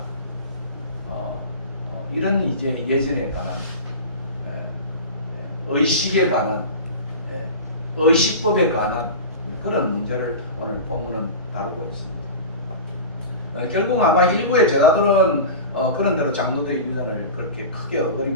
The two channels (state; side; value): inverted; both; correlation -0.30